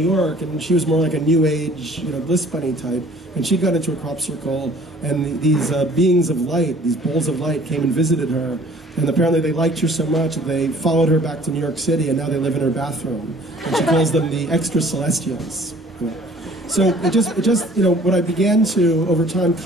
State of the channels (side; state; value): both; normal; correlation 0.53